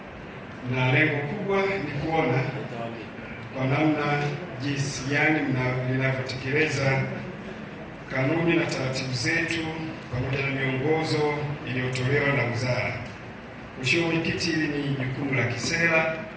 na lengo kubwa ni kuona kwa namna jinsi gani linavyotekeleza kanuni na taratibu zetu pamoja na miongozo iliyotolewa na wizara. Mheshimiwa Mwenyekiti, hili ni jukumu la kisera.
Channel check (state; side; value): identical; both; correlation 1.00